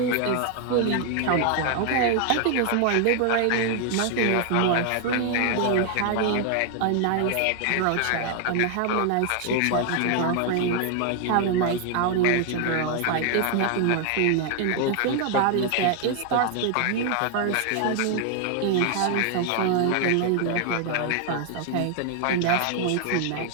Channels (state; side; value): different; both; correlation 0.00